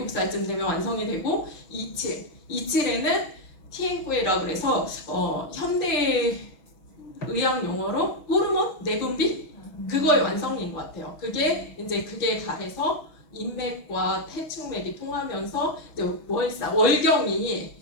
되면 완성이 되고 27에는 티엔쿠에라고 그래서 현대 의학 용어로 호르몬 내분비 그거의 완성인 것 같아요. 그게 가해서 인맥과 태충맥이 통하면서 이제 월경이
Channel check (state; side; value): late; right; 6.3 ms